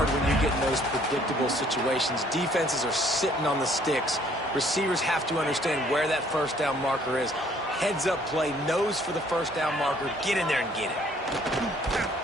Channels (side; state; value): both; normal; correlation 0.61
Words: when you get in those predictable situations. Defenses are sitting on the sticks. Receivers have to understand where that first down marker is. Heads up play, nose for the first down marker. Get in there and get it.